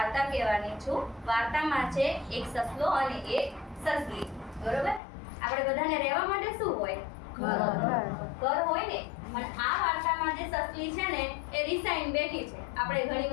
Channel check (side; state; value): right; drops out; at 5.0 s